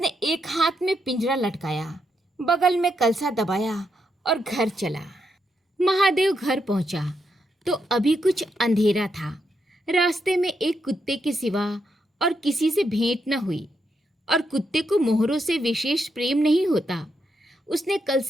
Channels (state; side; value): normal; both; correlation 0.81